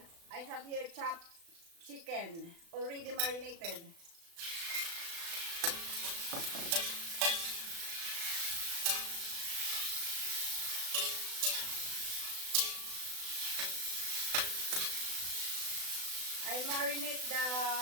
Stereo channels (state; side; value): late; left; 36 ms